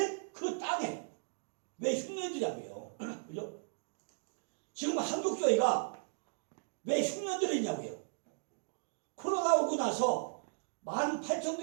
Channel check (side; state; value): left; silent; digital silence